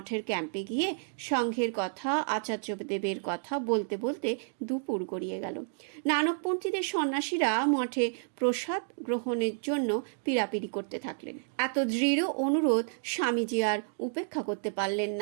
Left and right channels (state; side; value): silent; left; digital silence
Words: ক্যাম্পে গিয়ে সংঘের কথা, আচার্যদেবের কথা বলতে বলতে দুপুর গড়িয়ে গেল। নানকপন্থীদের সন্ন্যাসীরা মঠে প্রসাদ গ্রহণের জন্য পীড়াপিড়ি করতে থাকলেন। এত দৃঢ় অনুরোধ স্বামীজি আর উপেক্ষা করতে পারলেন